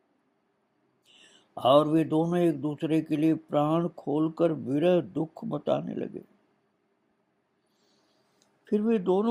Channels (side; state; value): both; identical; correlation 1.00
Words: और वे दोनों एक दूसरे के लिए प्राण खोलकर विरह दुख बताने लगे। फिर वे